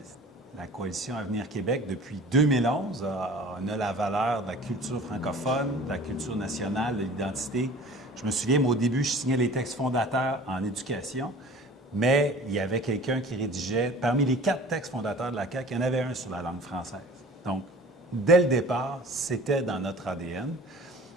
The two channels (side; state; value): both; normal; correlation 0.44